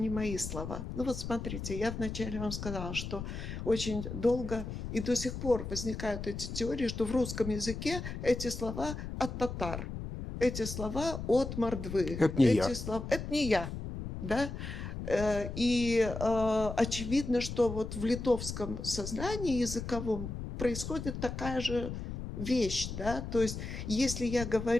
мои слова. Ну вот смотрите, я вначале вам сказала, что очень долго и до сих пор возникают эти теории, что в русском языке эти слова от татар, эти слова от мордвы, Это не эти я. слова... Это не я, да? И очевидно, что вот в литовском сознании языковом происходит такая же вещь, да, то есть если я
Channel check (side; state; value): left; noise; rumble, 7 dB below the sound